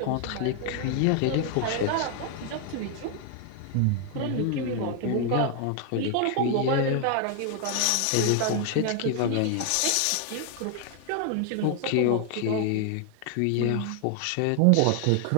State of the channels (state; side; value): different; both; correlation 0.00